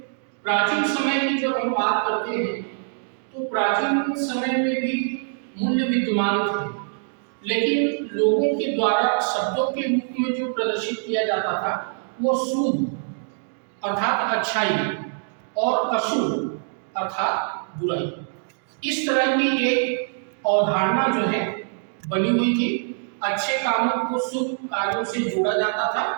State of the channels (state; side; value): silent; left; digital silence